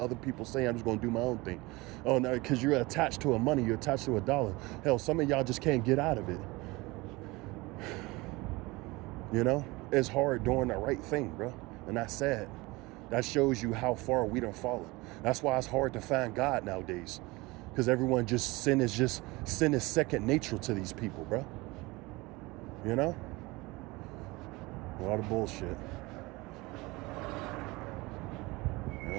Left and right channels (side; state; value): left; quieter; 22.8 dB